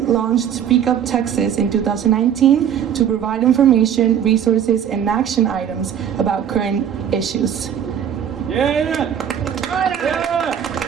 Speak Up Texas in 2019 to provide information, resources, and action items about current issues. Yeah.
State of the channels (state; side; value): quieter; left; 9.0 dB